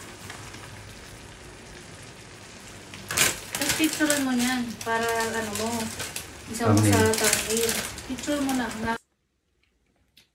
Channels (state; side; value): identical; both; correlation 1.00